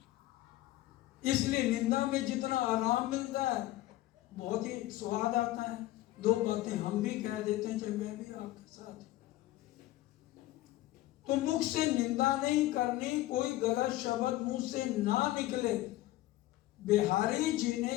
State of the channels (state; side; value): quieter; right; 16.4 dB